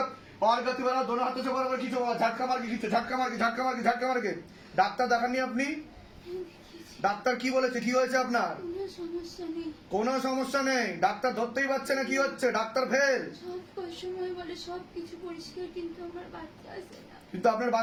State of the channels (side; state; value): both; identical; correlation 1.00